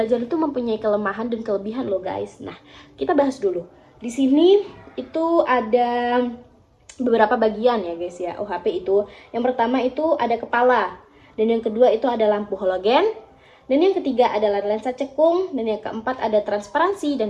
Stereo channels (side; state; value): both; identical; correlation 1.00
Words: itu mempunyai kelemahan dan kelebihan loh guys. Nah, kita bahas dulu. Di sini itu ada beberapa bagian ya guys ya, OHP itu. Yang pertama itu ada kepala, dan yang kedua itu ada lampu halogen, dan yang ketiga adalah lensa cekung, dan yang keempat ada transparansi,